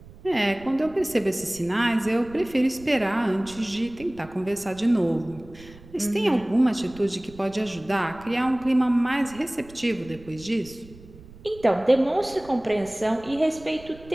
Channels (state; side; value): noise; right; rumble, 21 dB below the sound